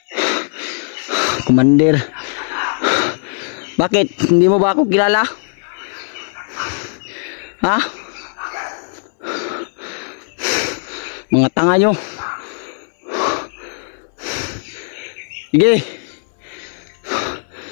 Commander. Bakit? Hindi mo ba ako kilala? Ha? Mga tanga nyo. Sige.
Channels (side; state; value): right; silent; 62 dB below the other